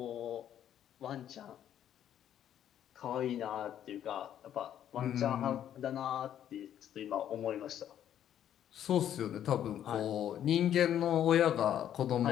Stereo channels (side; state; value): right; quieter; 10.5 dB